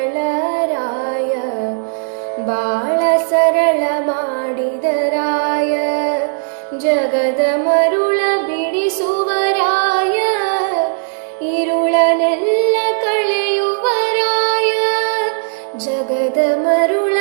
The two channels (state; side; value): silent; left; digital silence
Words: ಬಾಳ ಸರಳ ಮಾಡಿದ ರಾಯ. ಜಗದ ಮರುಳ ಬಿಡಿಸುವ ರಾಯ, ಇರುಳನೆಲ್ಲ ಕಳೆಯುವ ರಾಯ. ಜಗದ ಮರುಳ